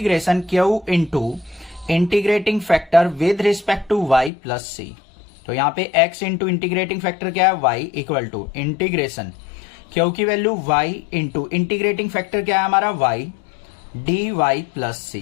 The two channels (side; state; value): right; drops out; at 4.3 s